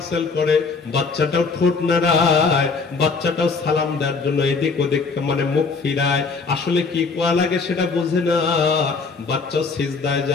করে, বাচ্চাটাও ঠোঁট নাড়ায়, বাচ্চাটাও সালাম দেওয়ার জন্য এদিক ওদিক মানে মুখ ফিরায়। আসলে কি কোয়া লাগে সেটা বুঝে না, বাচ্চাও সিজদায়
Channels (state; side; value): quieter; right; 4.6 dB